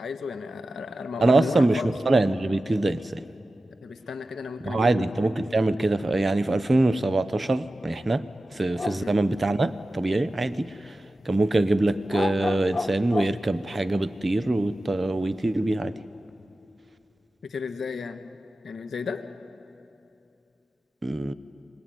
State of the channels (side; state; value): both; normal; correlation 0.94